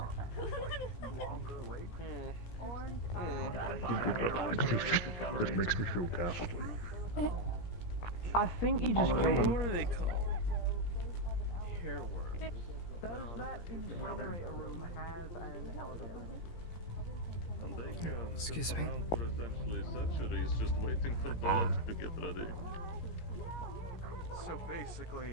It makes me feel ghastly. I think you just gave What are they called? care work. Does that incinerator room have an elevator? Excuse me. For essentially centuries, just waiting for blood to get ready. So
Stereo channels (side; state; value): right; late; 17 ms